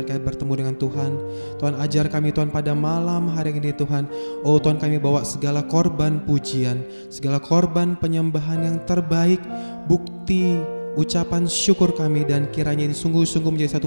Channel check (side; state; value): both; inverted; correlation -1.00